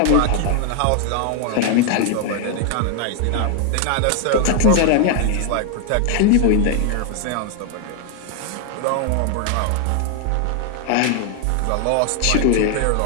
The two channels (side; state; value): both; different; correlation 0.00